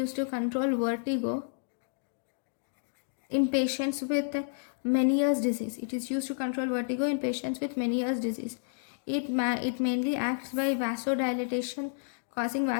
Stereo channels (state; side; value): silent; right; digital silence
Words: to control vertigo in patients with Meniere's disease. It is used to control vertigo in patients with Meniere's disease. It mainly acts by vasodilatation, causing